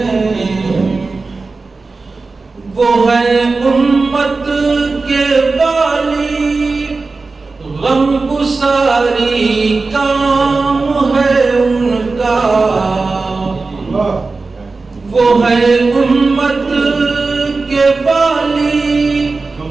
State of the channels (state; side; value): quieter; left; 3.9 dB